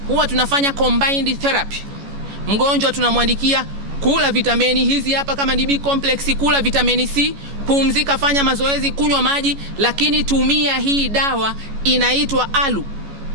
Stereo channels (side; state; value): left; late; 14 ms